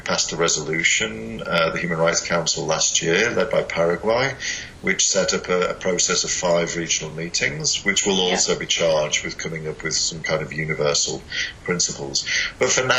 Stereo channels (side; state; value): both; identical; correlation 1.00